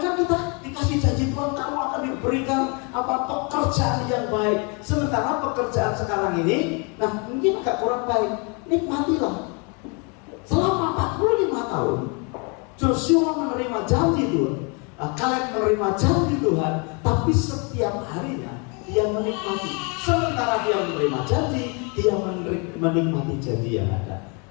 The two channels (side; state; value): right; quieter; 33.5 dB